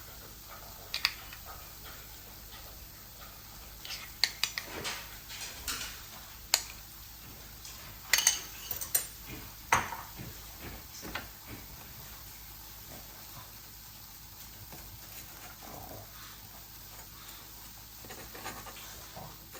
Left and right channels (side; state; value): both; identical; correlation 1.00